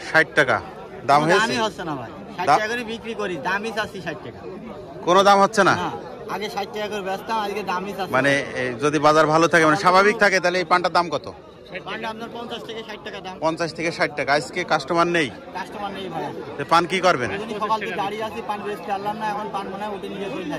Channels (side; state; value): both; identical; correlation 1.00